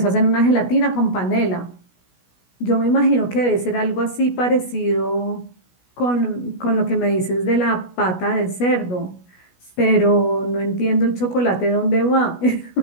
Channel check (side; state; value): right; late; 16 ms